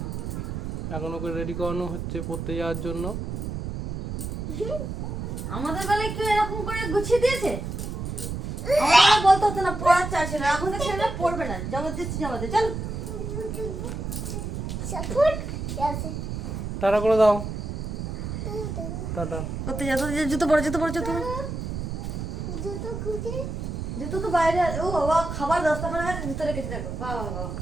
এখন ওকে রেডি করানো হচ্ছে পড়তে যাওয়ার জন্য। আমাদের বেলায় কেউ এরকম করে গুছিয়ে দিয়েছে? আমাদের বলতে হতো না পড়ার চাষ ছিল, এখন তো ছেলেরা পড়বে না, জবরদস্তি জামাতে চল। টাটা করে দাও, টাটা। করতে যা, জুতো পরে জুতো তো বাইরে। ও বাবা, খাবার 10টা করে গেছে, জুতো রেখেছি দেখো। বাবা বাবা,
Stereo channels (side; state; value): right; noise; rumble, 5 dB below the sound